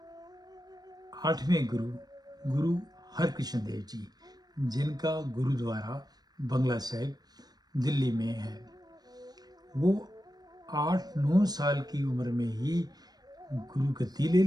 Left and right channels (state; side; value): late; left; 0.19 ms